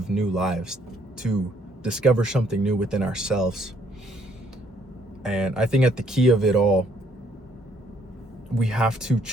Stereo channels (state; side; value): normal; both; correlation 0.66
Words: new lives, to discover something new within ourselves. And I think at the key of it all, we have to